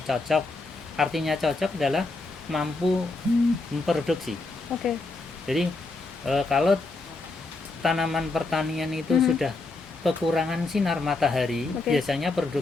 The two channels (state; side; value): quieter; right; 3.4 dB